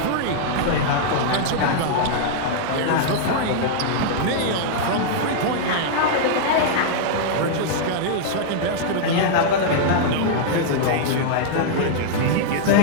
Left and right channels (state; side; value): different; both; correlation -0.01